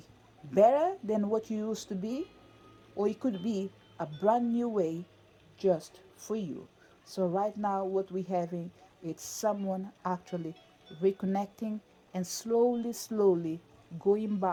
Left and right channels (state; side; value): identical; both; correlation 1.00